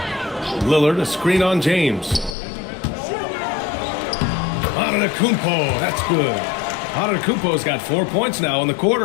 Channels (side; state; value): right; drops out; at 2.4 s